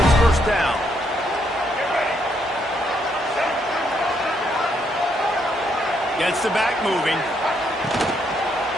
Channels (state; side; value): normal; both; correlation 0.74